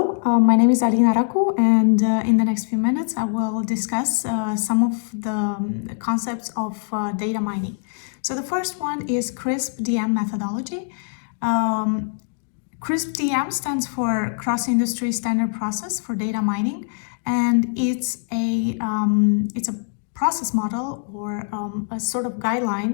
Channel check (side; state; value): right; silent; 62 dB below the other